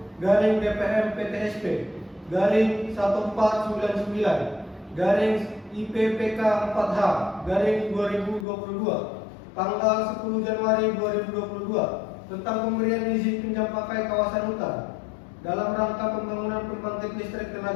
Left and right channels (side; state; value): right; drops out; at 8.5 s